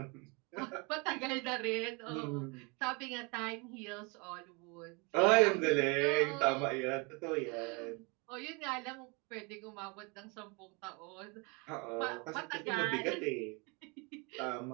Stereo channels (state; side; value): quieter; left; 30.2 dB